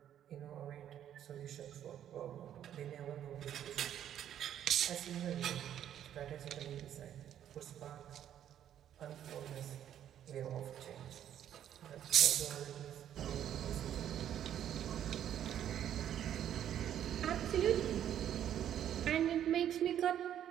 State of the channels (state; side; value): quieter; left; 10.5 dB